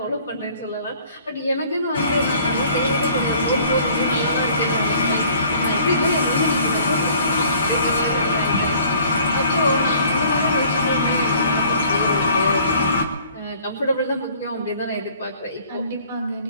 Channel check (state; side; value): inverted; both; correlation -0.54